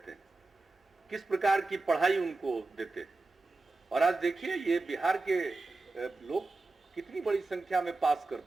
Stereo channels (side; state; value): left; quieter; 3.3 dB